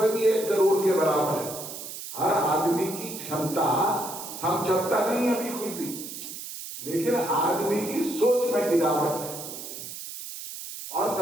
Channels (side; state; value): right; noise; hiss, 10 dB below the sound